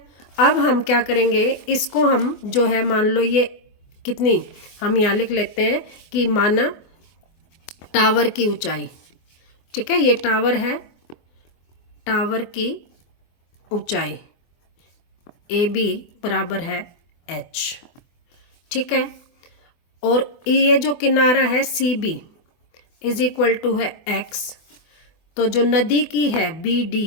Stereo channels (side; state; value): right; late; 24 ms